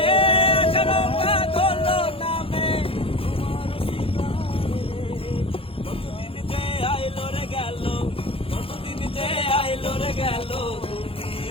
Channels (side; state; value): right; late; 0.27 ms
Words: আষাঢ় বাদল নামে কতদিন যে আইলো রে গেল কতদিন যে আইলো রে গেল তুমি